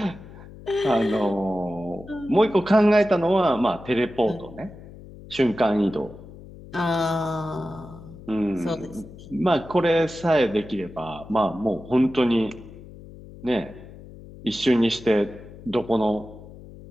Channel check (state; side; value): noise; left; hum, 17 dB below the sound